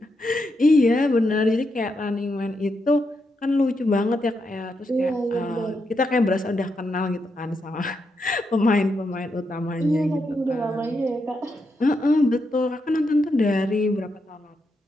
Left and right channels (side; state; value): both; normal; correlation 0.82